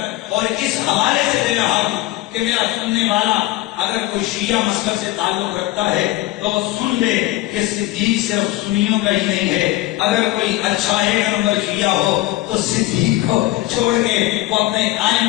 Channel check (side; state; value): right; quieter; 16.8 dB